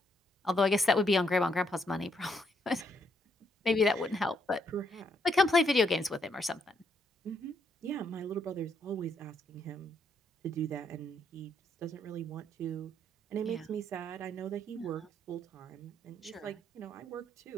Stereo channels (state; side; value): normal; both; correlation 0.74